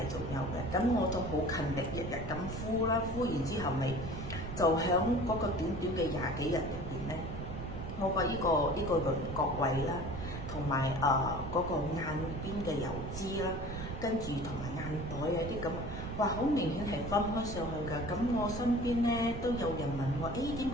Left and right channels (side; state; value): right; noise; rumble, 7 dB below the sound